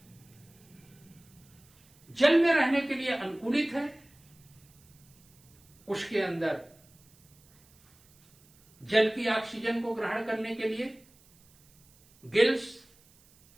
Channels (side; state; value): right; noise; hiss, 29 dB below the sound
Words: जल में रहने के लिए अनुकूलित है, उसके अंदर जल की ऑक्सीजन को ग्रहण करने के लिए गिल्स,